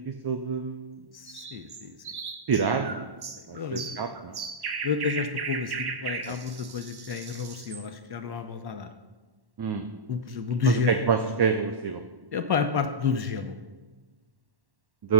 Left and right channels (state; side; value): late; left; 1.1 ms